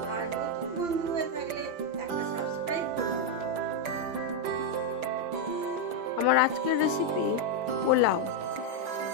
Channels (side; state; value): left; late; 5.9 ms